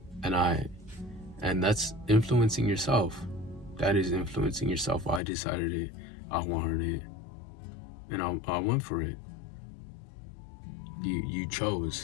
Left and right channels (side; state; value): right; drops out; at 5.2 s